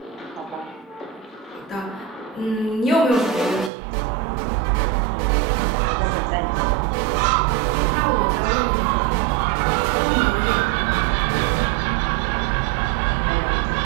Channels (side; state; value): left; drops out; at 3.7 s